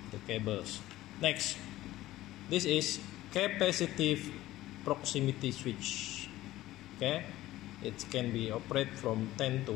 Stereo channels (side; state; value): right; quieter; 15.8 dB